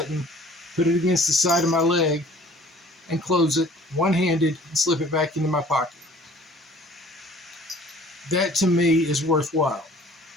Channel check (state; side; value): normal; both; correlation 0.52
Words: put it against the side of my leg, and close it one-handed and slip it back into my pocket. That to me is worthwhile,